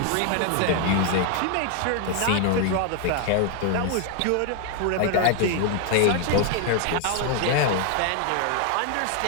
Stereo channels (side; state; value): both; different; correlation 0.00